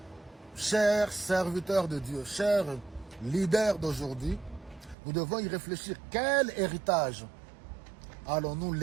Chers serviteurs de Dieu, chers leaders d'aujourd'hui, nous devons y réfléchir. Quel héritage allons-nous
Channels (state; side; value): drops out; left; at 5.0 s